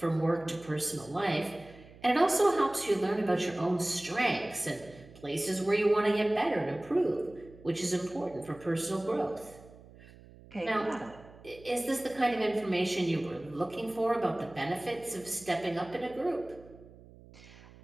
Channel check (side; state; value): right; noise; hum, 21 dB below the sound